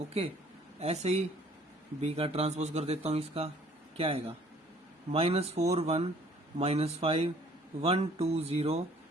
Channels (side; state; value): both; normal; correlation 0.57